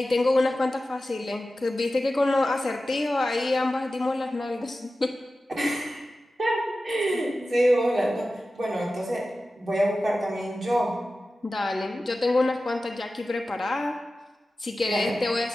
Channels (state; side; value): normal; both; correlation 0.94